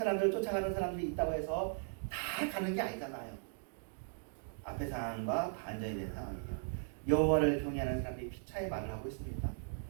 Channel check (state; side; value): silent; left; digital silence